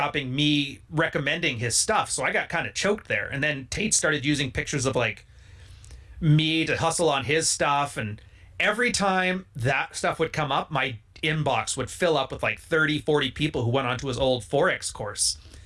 me recommending his stuff. So I got kind of choked there. And then Tate started using pictures of like me to hustle on his stuff, and every time that stuff would come up, my inbox would fill up with like 30-40 people who went onto his old Forex course,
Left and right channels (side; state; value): both; identical; correlation 1.00